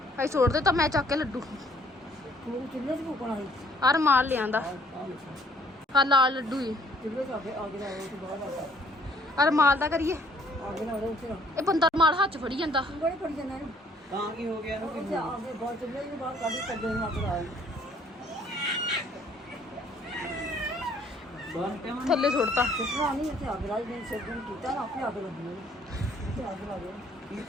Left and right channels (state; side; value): normal; both; correlation 0.61